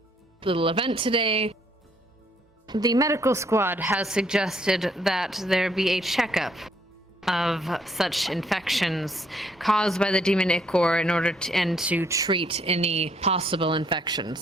little event today, the medical squad has suggested that there be a checkup of such infections caused by the demon ichor in order to treat any possible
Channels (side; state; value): both; normal; correlation 0.68